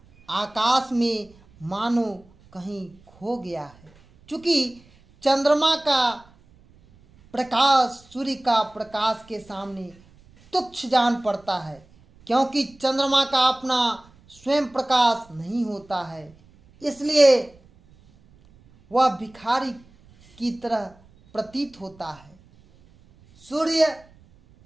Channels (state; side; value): noise; right; rumble, 28 dB below the sound